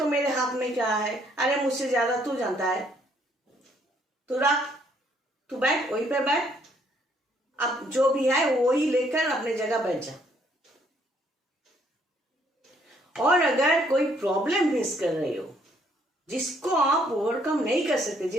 मेरे हाथ में क्या है, अरे मुझसे ज्यादा तू जानता है, तू रख, तू बैठ, वहीं पे बैठ, अब जो भी है वही लेकर अपने जगह बैठ जा। और अगर कोई प्रॉब्लम फेस कर रहे हो जिसको आप ओवरकम नहीं कर सकते,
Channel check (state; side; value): normal; both; correlation 0.67